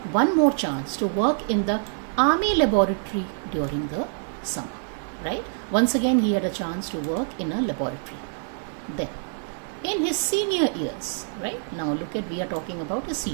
one more chance to work in the Army laboratory during the summer, right? Once again, he had a chance to work in a laboratory. Then, in his senior years, right? Now look at, we are talking about his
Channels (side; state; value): left; silent; 57 dB below the other